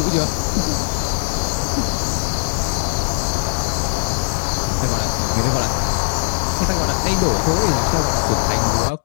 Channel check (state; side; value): silent; right; digital silence